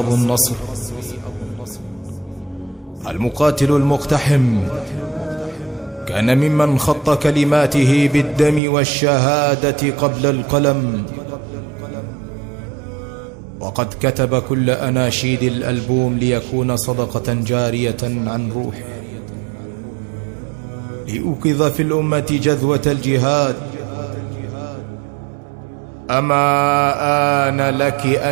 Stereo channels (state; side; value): drops out; left; at 8.6 s